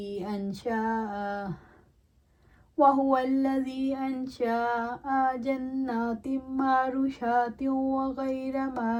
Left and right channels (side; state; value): both; identical; correlation 1.00